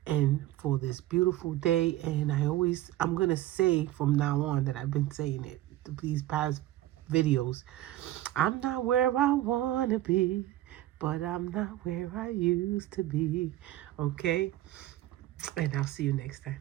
and for this beautiful day. And I'm going to say from now on that I've been saying it these past videos. I'm not where I want to be, but I'm not where I used to be, okay? And I'll see you next time.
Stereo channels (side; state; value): left; quieter; 14.8 dB